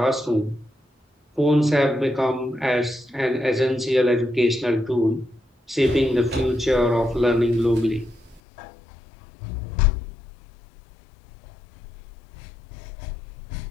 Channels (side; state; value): right; drops out; at 8.4 s